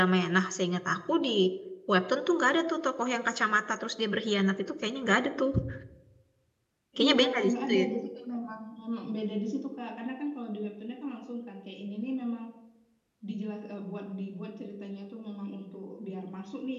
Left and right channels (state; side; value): identical; both; correlation 1.00